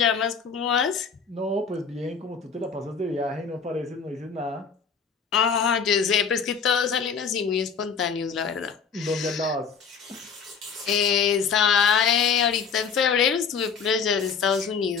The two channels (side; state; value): right; quieter; 6.1 dB